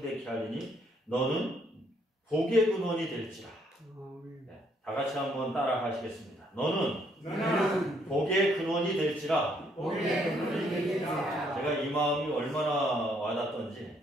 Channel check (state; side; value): normal; both; correlation 0.69